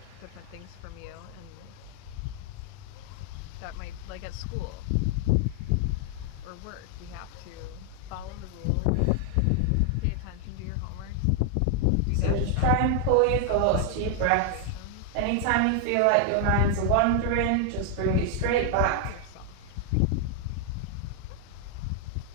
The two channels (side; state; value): both; different; correlation 0.00